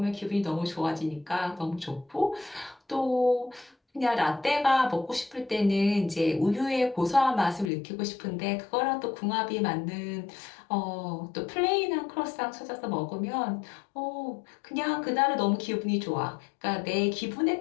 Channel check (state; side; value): drops out; right; at 7.7 s